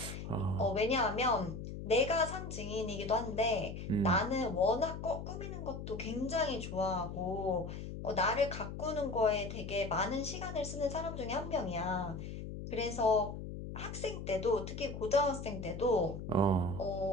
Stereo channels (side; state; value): left; noise; hum, 8 dB below the sound